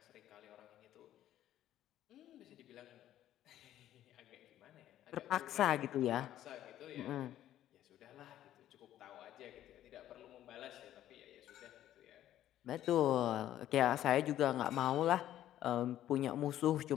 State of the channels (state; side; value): quieter; right; 12.4 dB